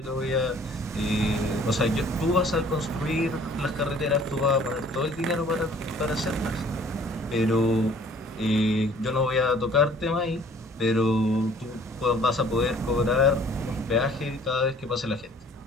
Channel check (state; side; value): normal; both; correlation 0.54